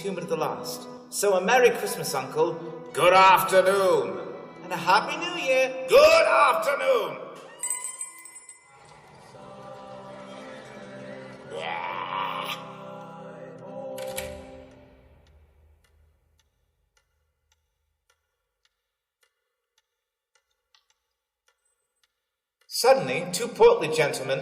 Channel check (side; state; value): both; identical; correlation 1.00